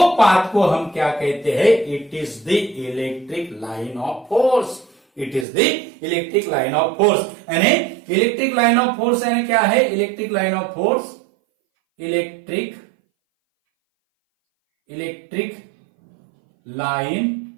पाथ को हम क्या कहते हैं, it is the electric line of force. It is the electric line of force. यानी इलेक्ट्रिक लाइन ऑफ फोर्स यानी क्या है, electric line of force, electric line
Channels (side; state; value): left; drops out; at 5.5 s